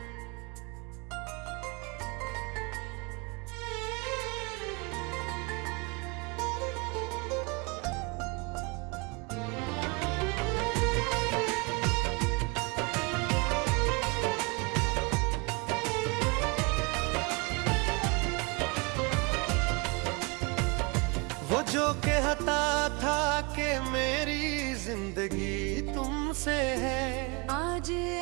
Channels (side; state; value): left; quieter; 30.1 dB